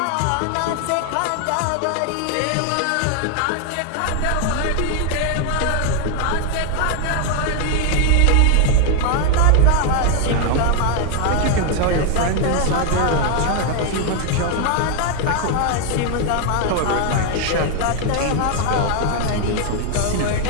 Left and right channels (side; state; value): both; different; correlation 0.00